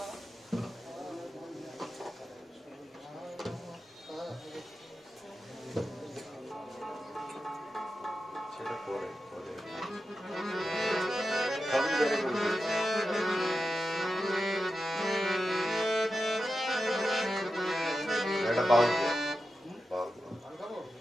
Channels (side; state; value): both; normal; correlation 0.91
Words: সেটা পরে পরে সবই বেড়ে গেছে। এটা বাউল দিয়ে বাউল